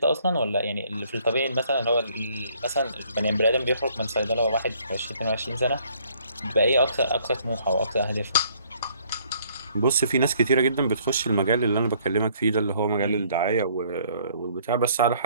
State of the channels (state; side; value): inverted; both; correlation -0.62